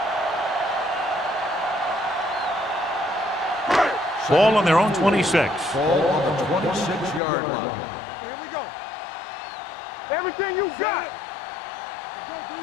Ball on their own 26. Ball on the 26-yard line. Here we go. Everything you got. Let's go, D.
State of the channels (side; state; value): right; drops out; at 7.2 s